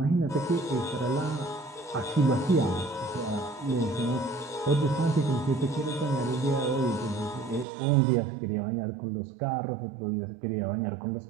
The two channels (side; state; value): left; drops out; at 7.7 s